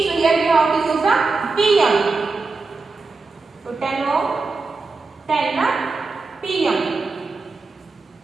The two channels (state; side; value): quieter; left; 4.0 dB